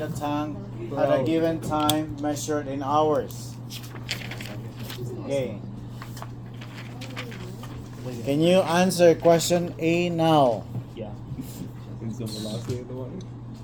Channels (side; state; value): both; identical; correlation 1.00